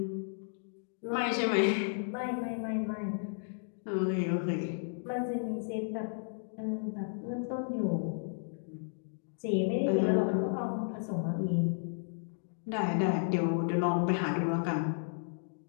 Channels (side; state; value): right; silent; digital silence